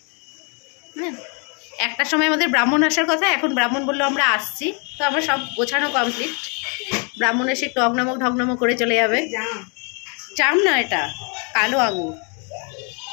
একটার সময় আমাদের ব্রাহ্মণ আসার কথা, এখন ব্রাহ্মণ বললো আমরা আসছি, তো আমার সব গোছানো কমপ্লিট। ব্রাহ্মণ এসে একটু অগ্নমক ঢগ্নমক করে চলে যাবে। জাম না, এটা কালো আঙুর।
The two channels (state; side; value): quieter; right; 36.1 dB